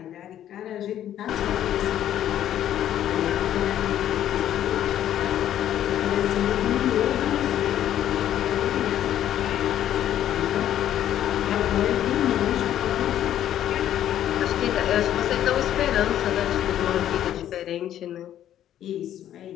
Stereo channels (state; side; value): quieter; right; 11.3 dB